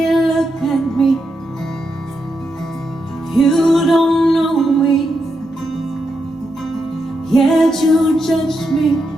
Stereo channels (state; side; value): normal; both; correlation 0.84